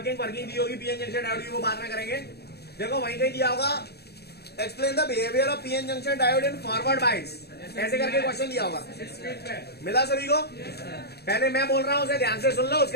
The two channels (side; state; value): right; late; 0.47 ms